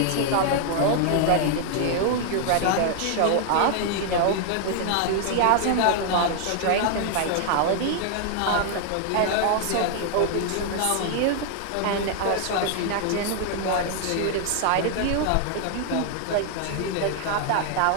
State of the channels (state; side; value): different; both; correlation 0.00